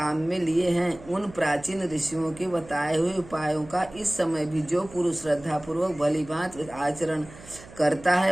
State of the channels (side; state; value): right; noise; hum, 19 dB below the sound